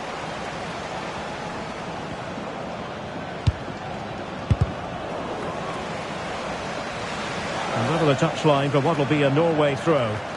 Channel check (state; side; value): identical; both; correlation 1.00